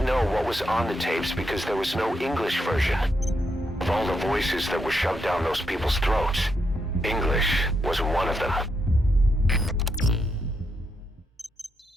know what was on the tapes because there was no English version. Of all the voices that were shoved down those people's throats, English was one of them.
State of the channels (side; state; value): both; normal; correlation 0.81